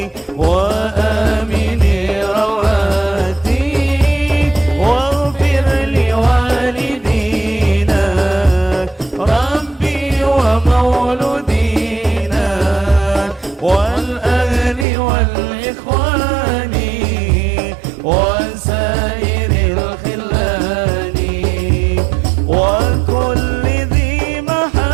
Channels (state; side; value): drops out; left; at 14.9 s